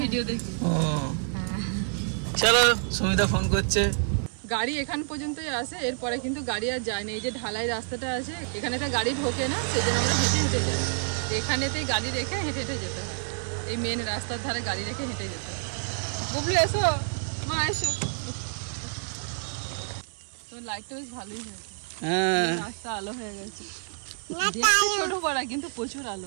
ভিডিও দেখি। ও চলো, সুমিতা ফোন করছে। গাড়ি এখান পর্যন্তই আসে, এরপরে কিন্তু গাড়ি আর যায় না। এই যে ঢালাই রাস্তাটা আছে, এখানে তো গাড়ি ঢোকে না, সেই জন্য আমরা হেঁটে হেঁটে যাই। এখানেতেই গাড়ি রেখে হেঁটে হেঁটে যেতে হয়, এই মেন রাস্তার ধারে গাড়ি রেখে হেঁটে যেতে হয়। বুবলু এসো, মা এসো। তোর লাইটটা বেশ ভালোই হয়েছে, হ্যাঁ রাস্তা আলো হয়ে গেছে। দেখতে ছোট পাড়া কিন্তু প্রচুর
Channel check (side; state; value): left; silent; digital silence